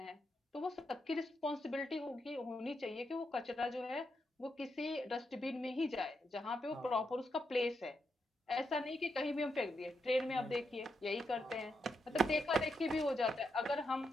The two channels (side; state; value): both; normal; correlation 0.83